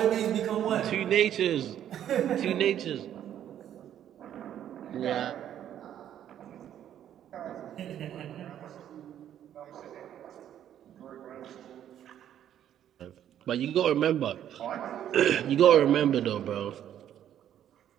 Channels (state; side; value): quieter; left; 10.6 dB